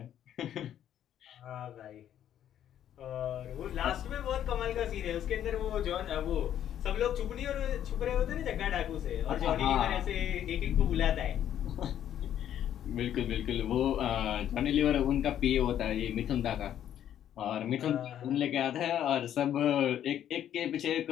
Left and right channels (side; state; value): right; quieter; 10.6 dB